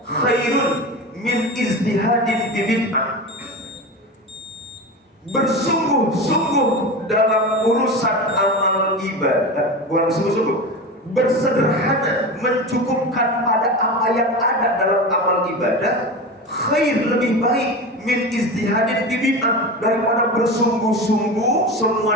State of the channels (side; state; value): both; normal; correlation 0.26